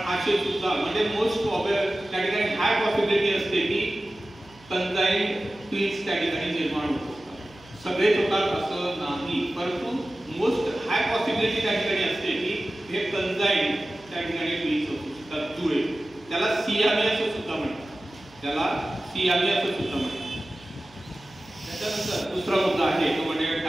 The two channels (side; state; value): right; noise; hum, 25 dB below the sound